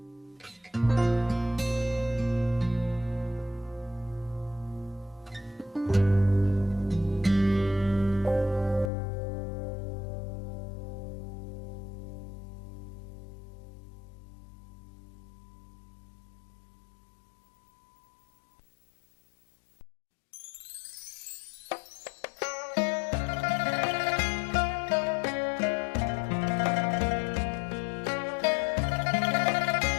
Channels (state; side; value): drops out; right; at 8.9 s